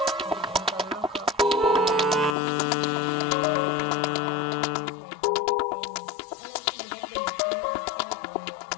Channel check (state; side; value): drops out; right; at 2.4 s